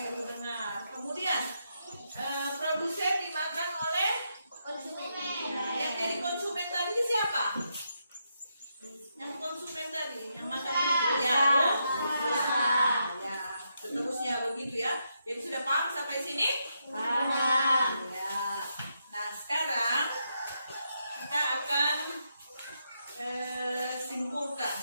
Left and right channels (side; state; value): both; inverted; correlation -0.82